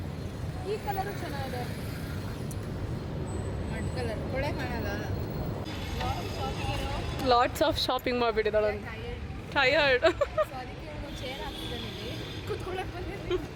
ಈ ಕಲರು ಚೆನ್ನಾಗಿದೆ, ಮಡ್ ಕಲರ್ ಕೊಳೆ ಕಾಣಲ್ಲ. ಲಾಟ್ಸ್ ಆಫ್ ಶಾಪಿಂಗ್ ಮಾಡಿಬಿಟ್ಟಿದ್ದಾಳೆ. ಟಯರ್ಡ್. ಚೇರ್ ಹಾಕ್ತಿದ್ದೀನಿ, ಕೂತ್ಕೊಳ್ಳೋಕೆ ಬಂದಿದ್ದೀನಿ.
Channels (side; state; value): both; identical; correlation 1.00